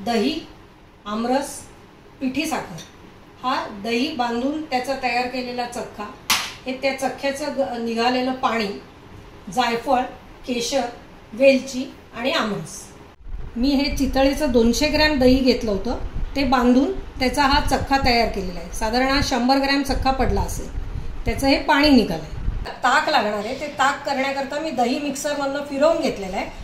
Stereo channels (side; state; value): both; identical; correlation 1.00